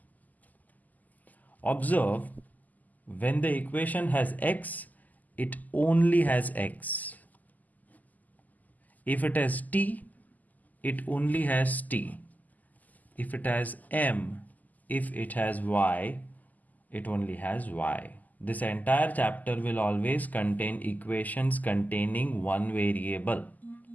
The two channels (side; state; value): right; late; 0.081 ms